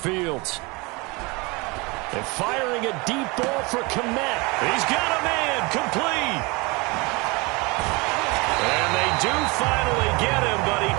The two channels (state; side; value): quieter; left; 26.4 dB